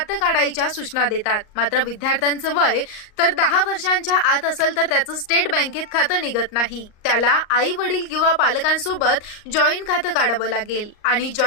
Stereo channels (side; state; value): right; late; 38 ms